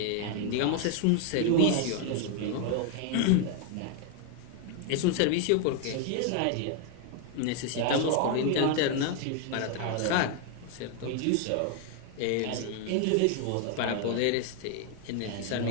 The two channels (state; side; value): different; both; correlation 0.00